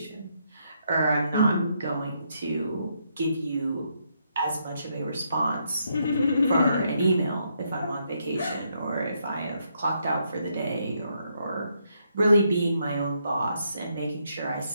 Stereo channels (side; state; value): both; inverted; correlation -0.76